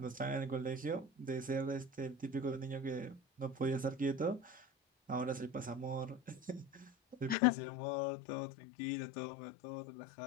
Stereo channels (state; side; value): drops out; right; at 7.4 s